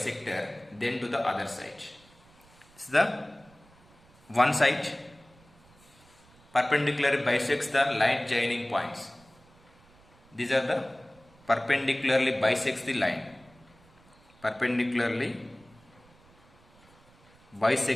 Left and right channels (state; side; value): noise; right; rumble, 28 dB below the sound